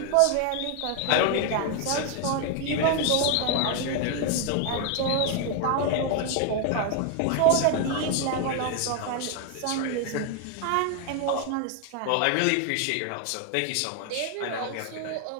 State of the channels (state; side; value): different; both; correlation 0.01